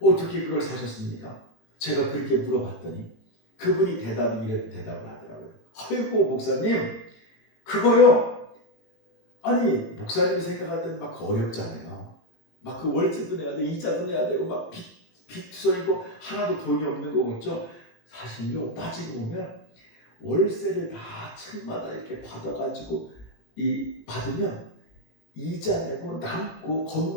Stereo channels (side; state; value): right; late; 18 ms